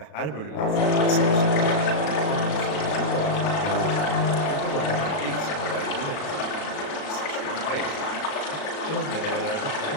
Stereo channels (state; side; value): late; right; 36 ms